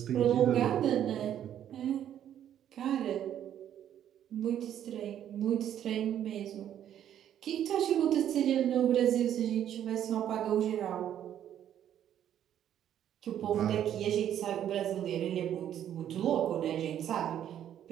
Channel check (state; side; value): quieter; left; 10.5 dB